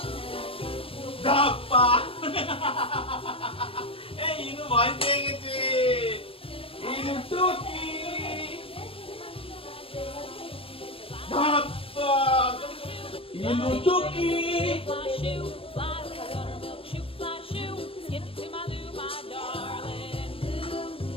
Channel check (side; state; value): right; late; 0.27 ms